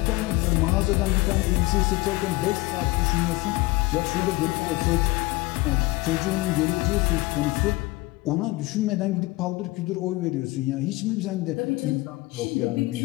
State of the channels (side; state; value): right; quieter; 21.5 dB